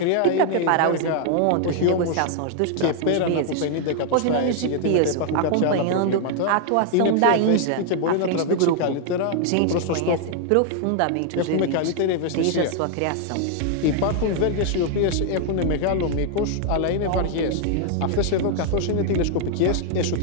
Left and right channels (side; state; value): both; different; correlation 0.00